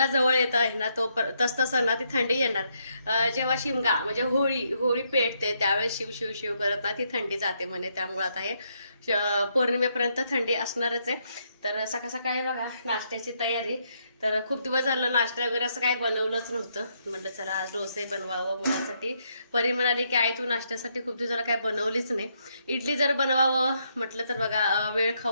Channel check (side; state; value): both; inverted; correlation -0.76